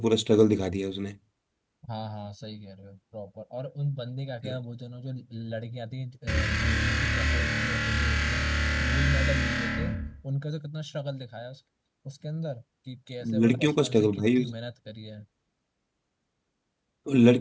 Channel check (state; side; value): identical; both; correlation 1.00